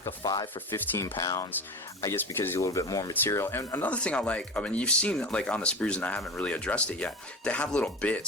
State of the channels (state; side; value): normal; both; correlation 0.29